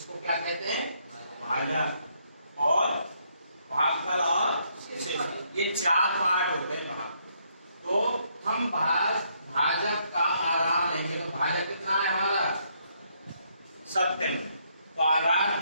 क्या कहते हैं? भाजक और भागफल और शेष। ये चार पार्ट होते हैं भाग। तो हम भाजक का आधार लेंगे तो भाजक कितना है हमारा? 70 में। तो आधार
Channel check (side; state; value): both; inverted; correlation -0.72